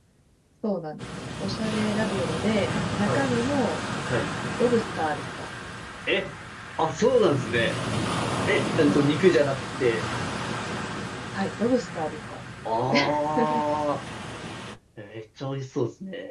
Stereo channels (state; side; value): identical; both; correlation 1.00